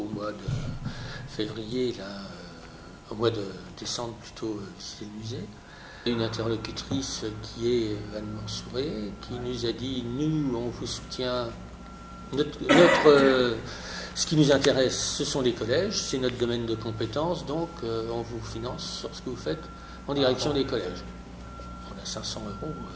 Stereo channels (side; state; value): both; identical; correlation 1.00